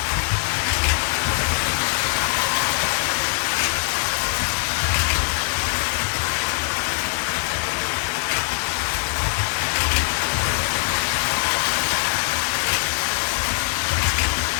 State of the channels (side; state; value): right; silent; digital silence